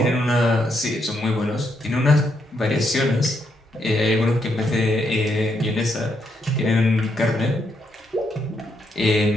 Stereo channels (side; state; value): both; normal; correlation 0.78